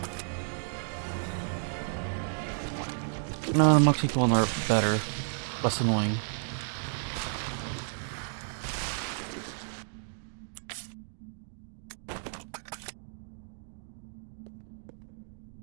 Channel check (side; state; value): left; silent; digital silence